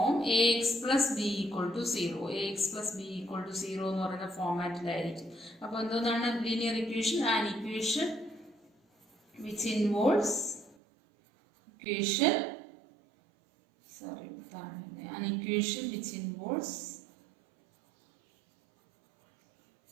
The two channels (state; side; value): drops out; left; at 10.8 s